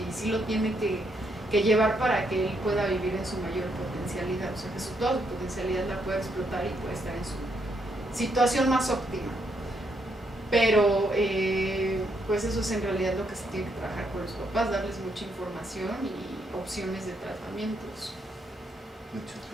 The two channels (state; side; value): normal; both; correlation 0.76